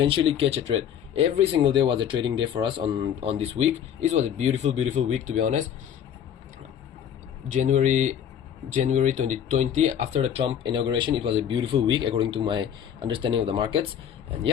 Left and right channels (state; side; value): quieter; right; 9.2 dB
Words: catch a trade. Every single day was a trading day for us on this week. It was a beautiful week, to be honest. January 2020, after the Trump inauguration, it was a beautiful week according to my understanding of the markets. And